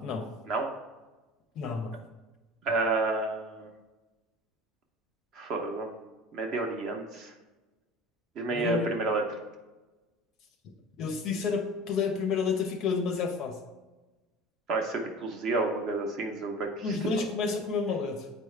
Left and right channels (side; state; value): both; normal; correlation 0.39